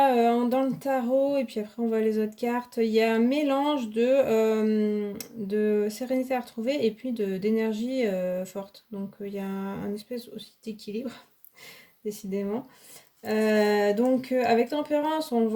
dans le tarot, et puis après on voit les autres cartes, il y a un mélange de sérénité à retrouver et puis d'énergie forte. Donc, il y a un espèce aussi d'équilibre, décidément. Donc, avec tempérance, on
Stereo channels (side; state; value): both; identical; correlation 1.00